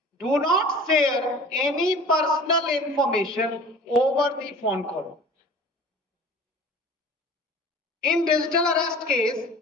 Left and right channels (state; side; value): normal; both; correlation 0.42